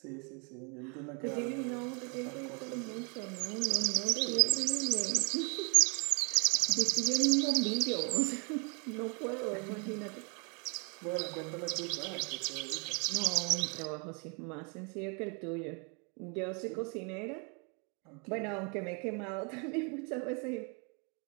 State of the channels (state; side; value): quieter; left; 34.9 dB